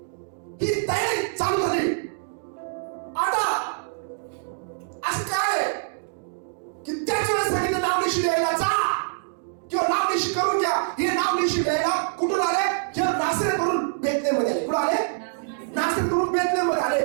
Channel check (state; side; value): silent; left; digital silence